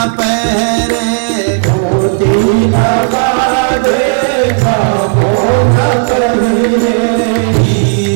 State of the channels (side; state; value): left; silent; 70 dB below the other